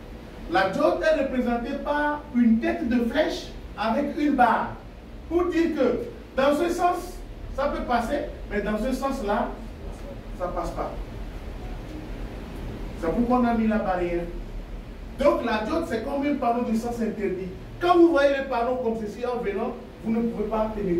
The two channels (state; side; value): identical; both; correlation 1.00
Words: La diode est représentée par une tête de flèche avec une barre, pour dire que dans ce sens, ça peut passer, mais dans ce sens-là, ça ne passe pas. C'est pourquoi on a mis la barrière. Donc la diode, c'est comme un panneau de sens interdit. Quand vous voyez les panneaux comme ceci en venant, vous ne pouvez pas